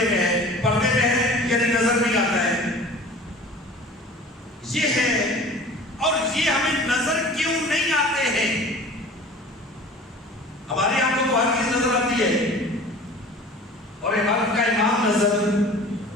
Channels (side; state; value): both; normal; correlation 0.43